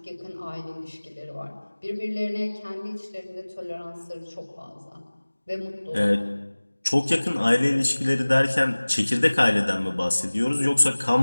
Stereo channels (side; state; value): both; inverted; correlation -1.00